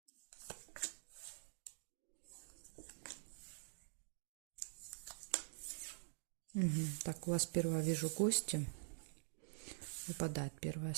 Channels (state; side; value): silent; left; digital silence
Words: Так, у вас первое, вижу, гости. Выпадает первое